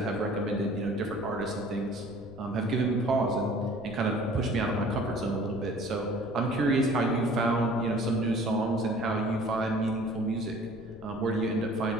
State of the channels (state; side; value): noise; left; rumble, 18 dB below the sound